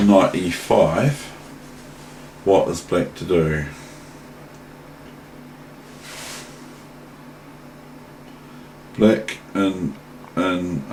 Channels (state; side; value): identical; both; correlation 1.00